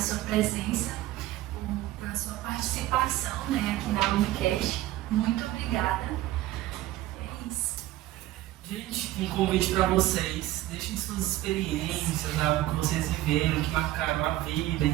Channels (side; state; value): left; quieter; 15.6 dB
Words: sua presença, a sua participação, né, aqui na Unicast. Muito obrigada. É isso. Gente, um convite para vocês. Deixem suas experiências, algo que vocês viveram, que marcaram a vida em